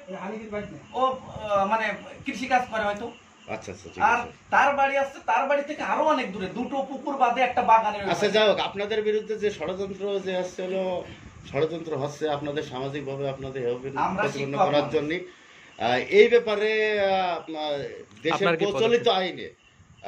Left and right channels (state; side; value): identical; both; correlation 1.00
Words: ও মানে কৃষি কাজ করে হয়তো। আচ্ছা আচ্ছা। আর তার বাড়ি আছে, তার বাড়ি থেকে আরো অনেক দূরে, 2টো পুকুর বাদে একটা বাগানের। আচ্ছা যাই হোক, আপনাদের বিরুদ্ধে যে ষড়যন্ত্র যে আসছে হলো ষড়যন্ত্র হচ্ছে আপনাদের সামাজিকভাবে আপনাদের প্রতিপন্ন করার জন্য, এই ব্যাপারে দেশের প্রচলিত আইনে